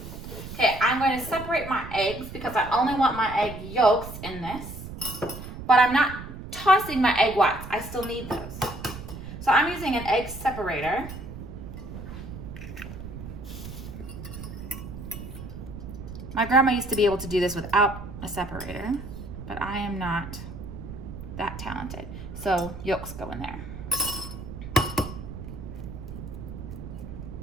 Okay, I'm going to separate my eggs because I only want my egg yolks in this, but I'm not tossing my egg whites. I still need those. So I'm using an egg separator. My grandma used to be able to do this without a separator, but I am not that talented. So yolks go in there.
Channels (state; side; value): noise; right; rumble, 10 dB below the sound